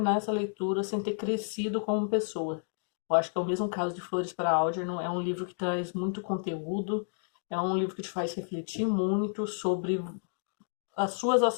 essa leitura sem ter crescido como pessoa. Eu acho que é o mesmo caso de Flores para Algernon. É um livro que traz muito conteúdo. É um livro que te faz refletir muito sobre as suas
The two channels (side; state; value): right; silent; digital silence